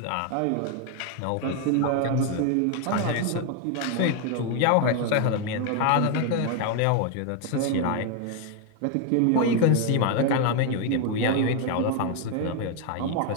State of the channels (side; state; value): both; different; correlation 0.00